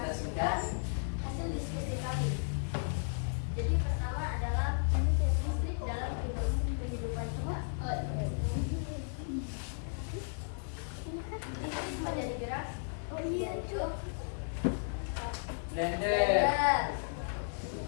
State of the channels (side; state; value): right; silent; 55 dB below the other